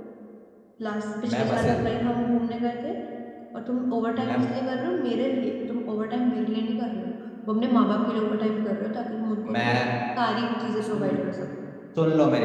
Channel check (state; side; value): identical; both; correlation 1.00